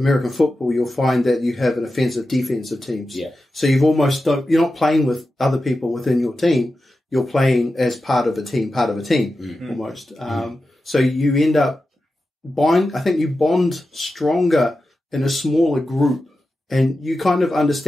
football, you'll find that you have an offensive, defensive teams. Yeah. So you're not playing with other people within your team. You're playing as part of a team, almost. So you end up you bond stronger in a smaller group, and you kind of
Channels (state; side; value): normal; both; correlation 0.92